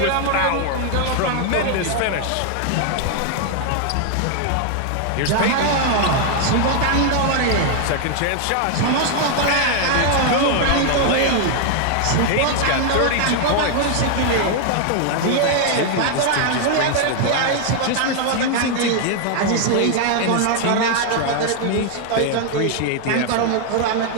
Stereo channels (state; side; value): different; both; correlation 0.00